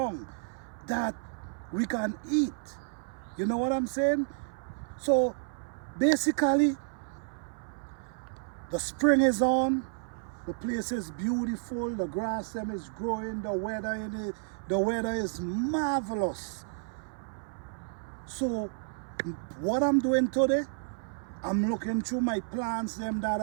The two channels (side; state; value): left; silent; 56 dB below the other